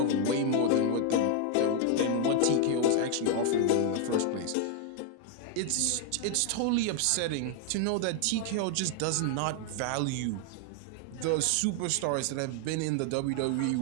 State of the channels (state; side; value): different; both; correlation 0.00